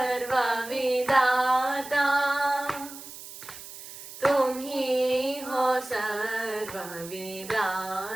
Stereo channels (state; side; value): noise; right; hiss, 14 dB below the sound